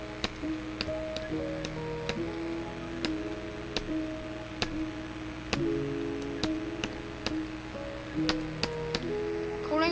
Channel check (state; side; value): identical; both; correlation 1.00